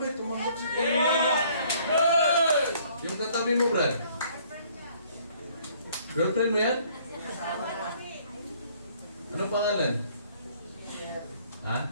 tumanggap si yung katabi mo, Brad? Girlfriend mo yan? Anong pangalan? Ha?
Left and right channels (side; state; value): both; inverted; correlation -0.60